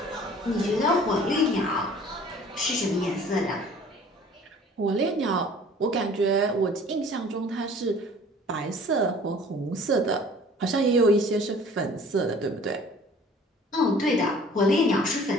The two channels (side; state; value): both; normal; correlation 0.50